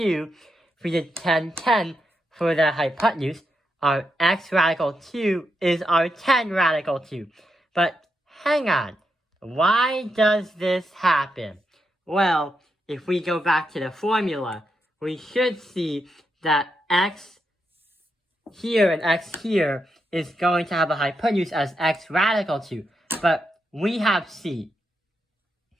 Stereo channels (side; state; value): both; normal; correlation 0.84